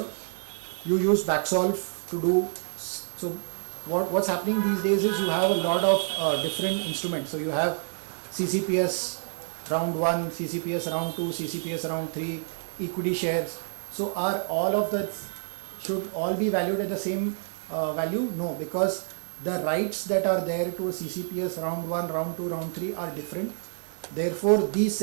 You use backsolve to do, so what's happening these days is you have a lot of different instruments. So you have CCPS round 1, CCPS round 2, CCPS round 3, equity shares. So are all of that should all be valued at the same value? No, because the rights that are there to a CCPS round 1, round 2, round 3 are different. Therefore, these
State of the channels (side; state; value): left; silent; digital silence